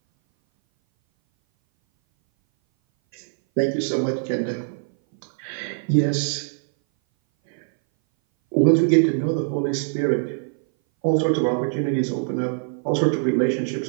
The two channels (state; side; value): silent; left; 59 dB below the other